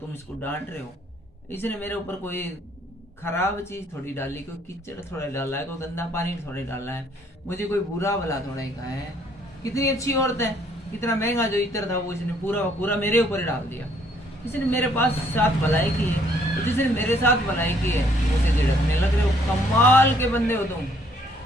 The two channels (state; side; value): normal; both; correlation 0.64